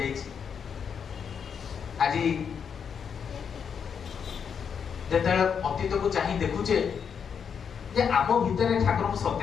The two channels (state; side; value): quieter; right; 7.0 dB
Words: आज जेते अतीत को चाही देखुचे जे आम भितर ठाकुर को